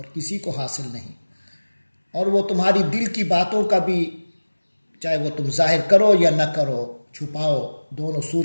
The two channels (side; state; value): both; inverted; correlation -1.00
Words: کسی کو حاصل نہیں، اور وہ تمہاری دل کی باتوں کا بھی چاہے وہ تم ظاہر کرو یا نہ کرو، چھپاؤ، دونوں